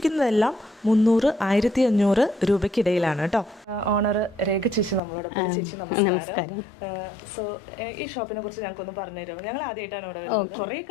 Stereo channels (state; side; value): drops out; right; at 5.0 s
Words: 300-1500 രൂപയ്ക്കിടയിലാണ് കേട്ടോ. ഓണർ രേഖ ചേച്ചി നമ്മളോടൊപ്പം. ചേച്ചി നമസ്കാരം. സോ ഈ ഷോപ്പിനെ കുറിച്ച് ഞങ്ങൾക്കൊന്ന് പറഞ്ഞുതരുമോ? ഞങ്ങൾ ആദ്യമായിട്ടാണ് ഇവിടെ വരുന്നത്. കുറേ